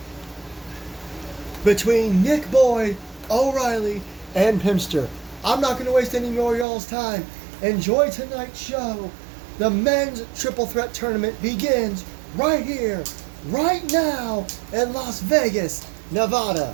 between Nick Boyd, O'Reilly, and Pimster. I'm not going to waste any more of y'all's time. Enjoy tonight's show. The men's triple threat tournament begins right here, right now in Las Vegas, Nevada.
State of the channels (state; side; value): drops out; left; at 6.7 s